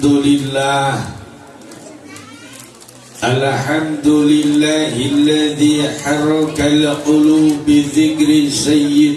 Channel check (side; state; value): both; identical; correlation 1.00